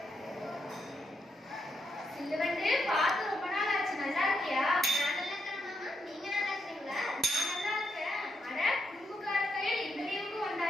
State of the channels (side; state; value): both; normal; correlation 0.80